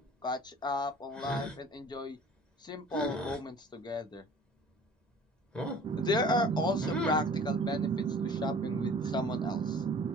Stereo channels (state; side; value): normal; both; correlation 0.47